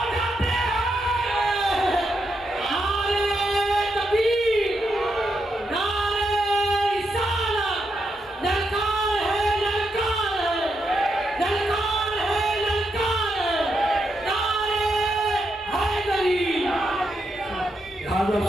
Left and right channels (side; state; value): both; normal; correlation 0.82